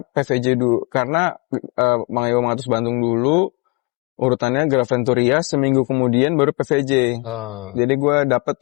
dulu, karena Mang Yogo Mangatus Bandung dulu, urutannya Graventuria, seminggu kemudian baru PVJ. Jadi gue dapet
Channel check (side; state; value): right; quieter; 28.9 dB